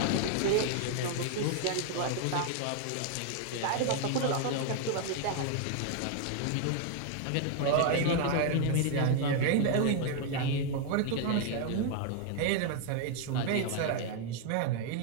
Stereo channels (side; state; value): both; different; correlation 0.00